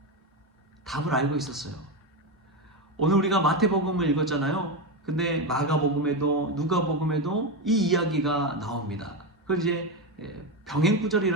답을 알고 있었어요. 오늘 우리가 마태복음을 읽었잖아요. 근데 마가복음에도 누가복음에도 이 이야기가 나옵니다. 그걸 이제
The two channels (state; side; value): normal; both; correlation 0.13